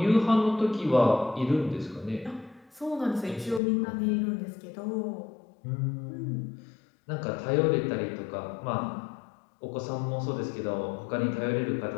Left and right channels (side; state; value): right; drops out; at 3.6 s